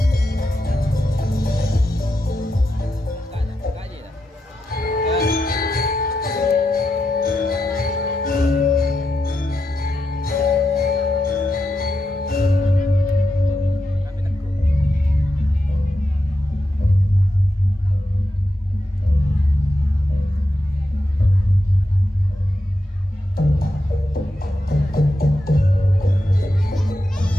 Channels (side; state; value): both; normal; correlation 0.86